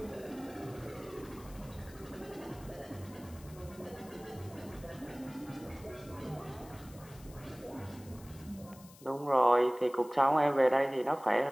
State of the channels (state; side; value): noise; left; hiss, 22 dB below the sound